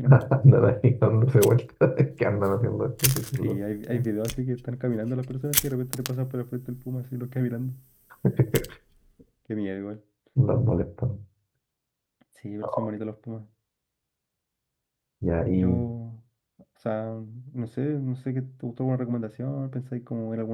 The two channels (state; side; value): identical; both; correlation 1.00